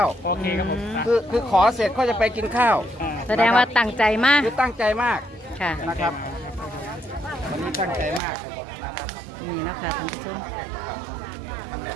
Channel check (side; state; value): left; drops out; at 8.2 s